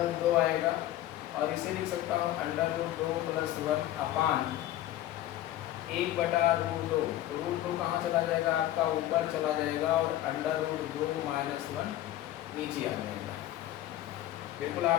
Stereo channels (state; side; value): quieter; right; 13.7 dB